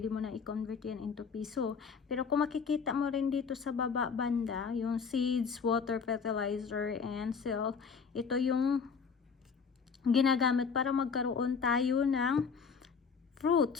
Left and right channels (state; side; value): quieter; right; 5.8 dB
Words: mo na i-convert yan into piso. Pero kung makikita mo rin dito sa baba banda, yung seeds, water, fertilizer, and sell, ito yung ginagamit para magkaroon tayo ng